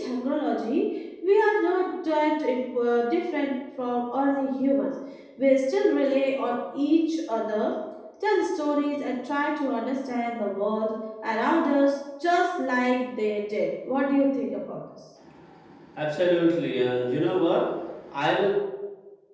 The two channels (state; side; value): identical; both; correlation 1.00